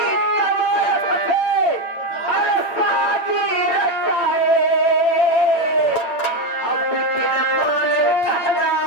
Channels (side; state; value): right; late; 9.0 ms